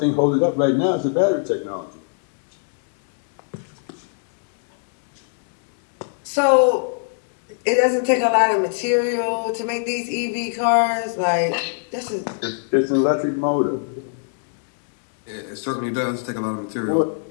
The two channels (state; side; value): silent; right; digital silence